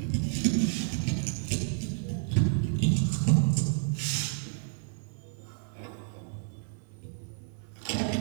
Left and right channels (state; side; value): silent; left; digital silence